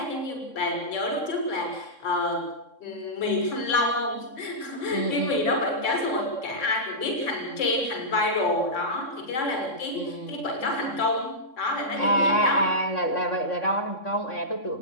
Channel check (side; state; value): right; late; 3.6 ms